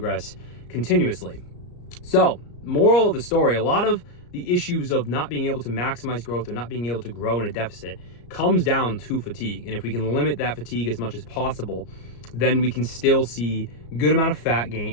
continuously. So, moral of the story, a lot of the issues of not being able to maximize growth or not being able to grow in a deficit comes down to fatigue. And if we can limit that fatigue as much as possible, then we can still see good amount of fat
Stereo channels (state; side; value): late; right; 34 ms